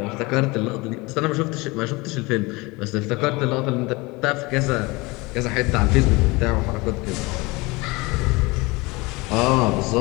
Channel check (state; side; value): quieter; right; 24.1 dB